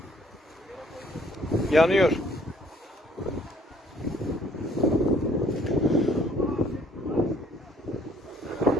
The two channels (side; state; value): both; normal; correlation 0.60